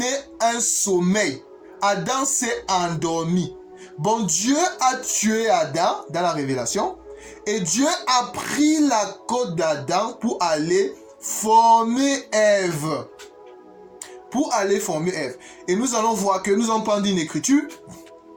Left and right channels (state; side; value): identical; both; correlation 1.00